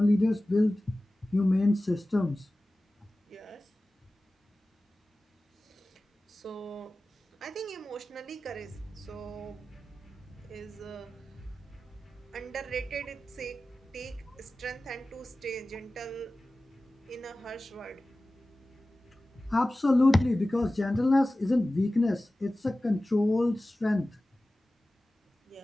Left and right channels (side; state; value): both; normal; correlation 0.96